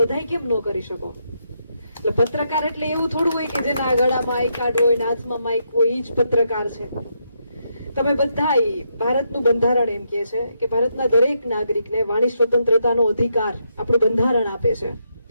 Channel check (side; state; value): both; inverted; correlation -0.79